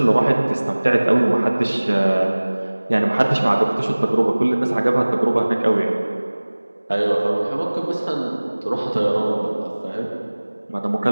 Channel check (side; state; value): both; inverted; correlation -1.00